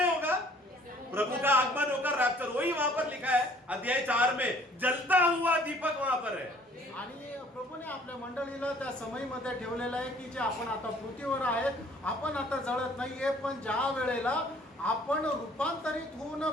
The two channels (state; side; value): normal; both; correlation 0.56